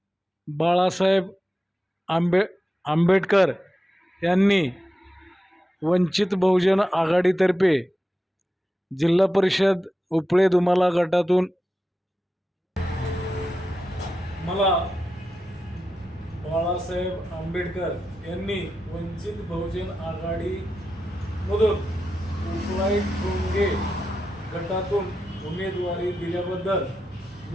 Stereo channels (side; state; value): both; normal; correlation 0.90